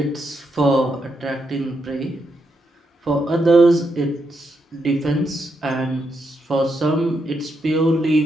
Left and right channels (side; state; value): both; normal; correlation 0.81